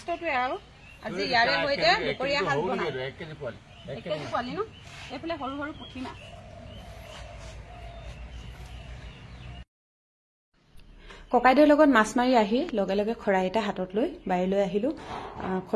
আৰু আজি ইয়াৰে সৈতে দুপৰীয়া সাজ বনাম। 1 কেজি পোৱালি ন? এইফালে সৰু সৰু পুঠি মাছ। ককাইদেউৰ লগত মাছ মাৰি আহি লগে লগে খৰাই এটা হাতত লৈ বাৰীলৈ আহিলো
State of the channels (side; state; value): both; identical; correlation 1.00